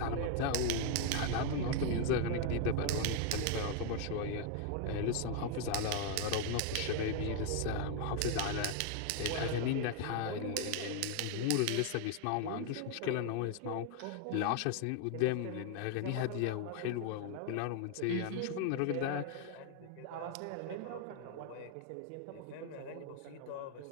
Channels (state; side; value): different; both; correlation 0.00